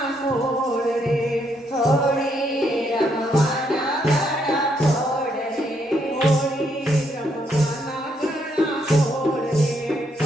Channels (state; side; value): normal; both; correlation 0.74